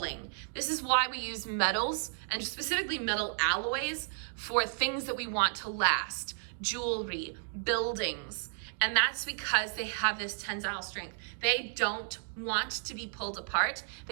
This is why we use metals, and specifically metal alloys, for things that we want to last, jewelry, buildings, and that's because they have this tensile strength. They don't want to be pulled apart.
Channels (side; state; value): left; silent; digital silence